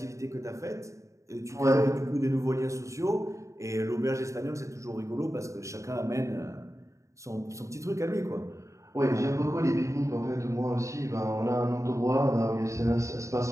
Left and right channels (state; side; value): late; left; 0.15 ms